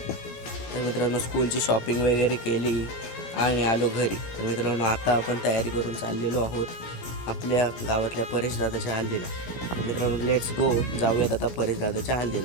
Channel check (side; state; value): right; late; 16 ms